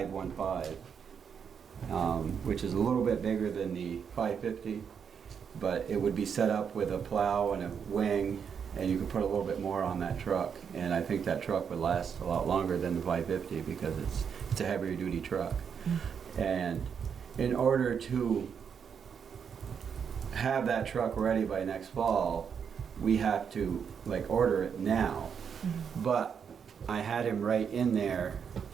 which is a little bit bigger than the 550, but it would be set up with a plow and a wing, and you could put a little bit more on that truck. And I think that truck would last a lot longer than the 550 because it's a heavier duty truck. And in order to have that truck ready by next fall, we have to order it now. But I had him right in there,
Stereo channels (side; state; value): left; quieter; 7.1 dB